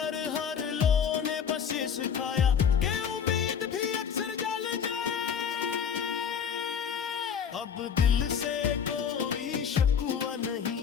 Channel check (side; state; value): right; quieter; 7.5 dB